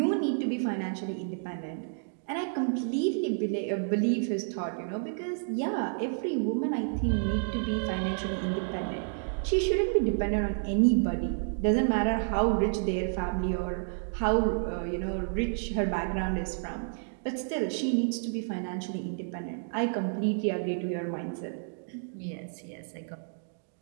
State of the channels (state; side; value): silent; left; digital silence